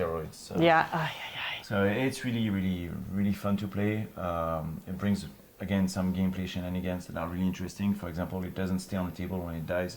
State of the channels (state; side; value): identical; both; correlation 1.00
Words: So, Yeah. So it's really fun to play. It brings again some gameplay shenanigans that are really interesting. For example, it doesn't stay on the table when it